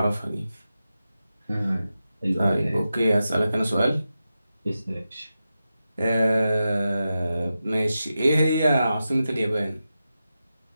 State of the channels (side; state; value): both; inverted; correlation -0.91